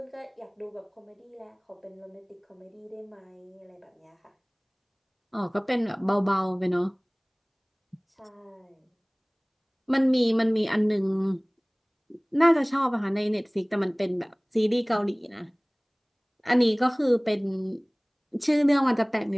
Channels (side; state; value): both; identical; correlation 1.00